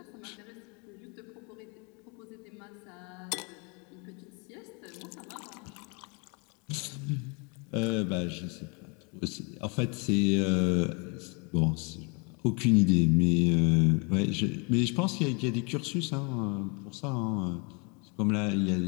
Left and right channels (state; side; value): quieter; right; 32.7 dB